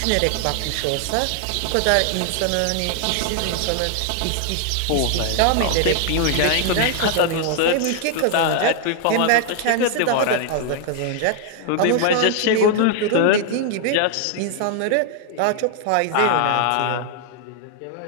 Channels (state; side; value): different; both; correlation 0.00